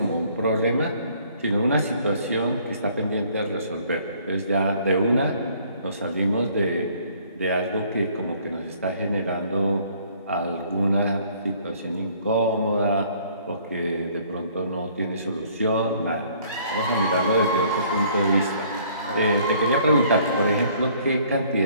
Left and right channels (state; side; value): inverted; both; correlation -0.60